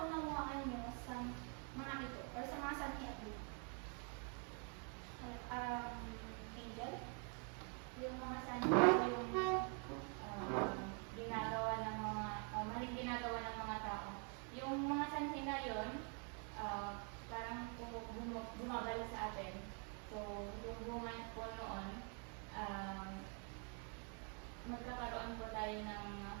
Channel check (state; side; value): quieter; left; 39.5 dB